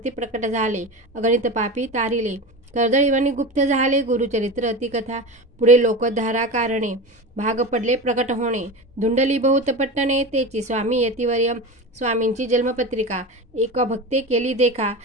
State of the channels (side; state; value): both; normal; correlation 0.26